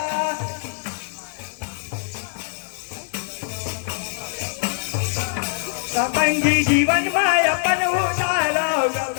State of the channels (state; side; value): silent; right; 59 dB below the other